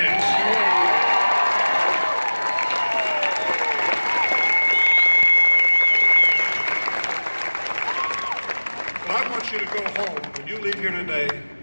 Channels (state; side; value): inverted; both; correlation -1.00